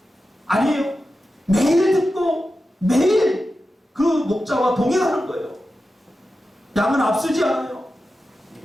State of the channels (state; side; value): normal; both; correlation 0.92